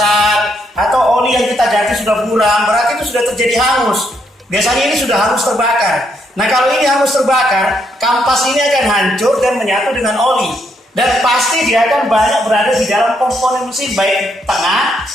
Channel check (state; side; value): normal; both; correlation 0.75